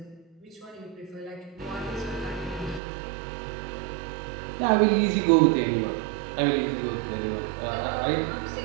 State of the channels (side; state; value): left; drops out; at 2.8 s